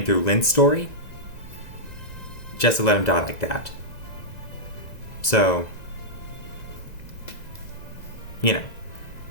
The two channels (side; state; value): right; late; 1.9 ms